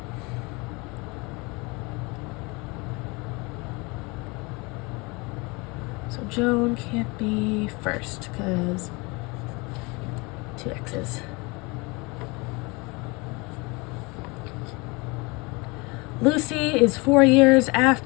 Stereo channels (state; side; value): quieter; right; 27.0 dB